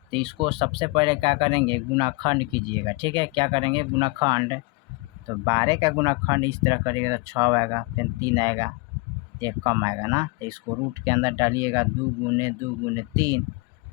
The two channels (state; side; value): quieter; right; 26.7 dB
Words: तो इसको सबसे पहले क्या करेंगे, गुणाखंड कीजिएगा, ठीक है। क्या करेंगे, गुणाखंड। तो 12 का गुणाखंड इस तरह करिएगा तो 6 आएगा, फिर 3 आएगा, 1 कम आएगा ना। तो इसको रूट के अंदर डालिएगा, 2 गुने 2 गुने 3,